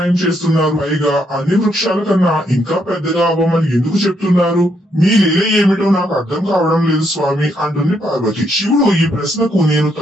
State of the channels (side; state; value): both; normal; correlation 0.75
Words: చేస్తున్నారు? పైగా అన్ని వృక్షాల కన్నా ఇంకా పెద్దగా అవ్వమని ఎందుకు చెప్తున్నారు? మీ లీల ఏమిటో నాకు అర్థం కావడం లేదు స్వామి అంటుంది పార్వతి. శివుడు, ఈ ప్రశ్నకు నేను